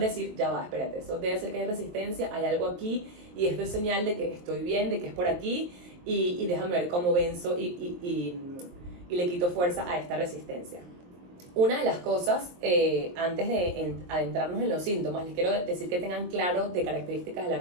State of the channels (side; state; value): left; late; 23 ms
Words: ya va, espérate, eso debe ser que hay resistencia, hay algo aquí, y esto es señal de que estoy bien, de que es por aquí, y déjame ver cómo venzo y le quito fuerza a esta resistencia. Una de las cosas, antes de adentrarnos en los síntomas, les quiero decir que tengan claro de características de la